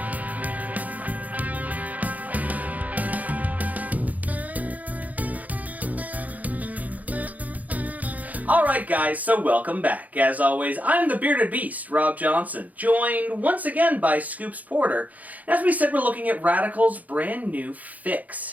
Alright guys, so welcome back. As always, I'm the Bearded Beast, Rob Johnson, joined once again by Scoops Porter. And as we said, we're looking at Radical's brand new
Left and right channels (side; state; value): left; late; 0.077 ms